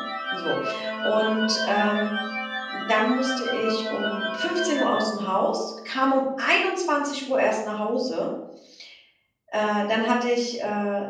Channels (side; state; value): both; identical; correlation 1.00